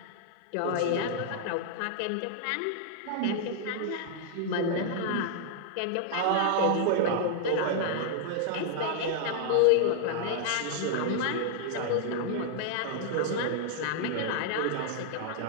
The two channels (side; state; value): both; different; correlation -0.01